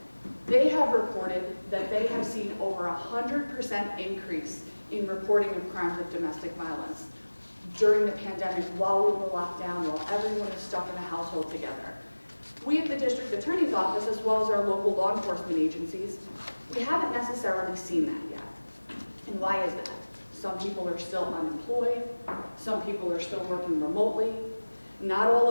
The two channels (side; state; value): both; inverted; correlation -1.00